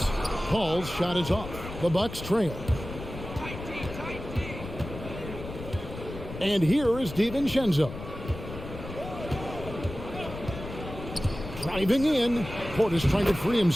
Paul's shot is off. The Bucks trail. And here is DiVincenzo. Driving in. Portis trying to free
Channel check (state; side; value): noise; left; rumble, 10 dB below the sound